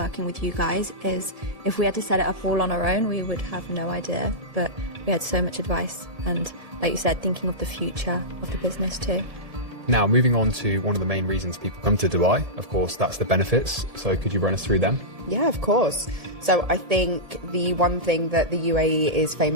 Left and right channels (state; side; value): late; left; 1.7 ms